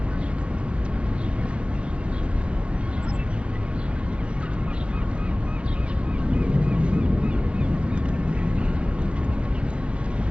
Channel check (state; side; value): late; left; 0.059 ms